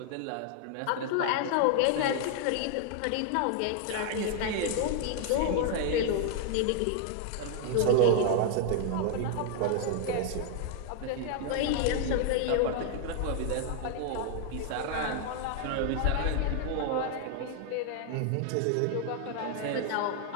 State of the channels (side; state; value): both; different; correlation 0.00